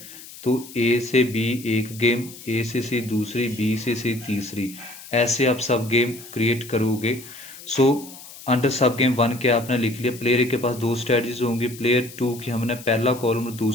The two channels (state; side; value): noise; left; hiss, 16 dB below the sound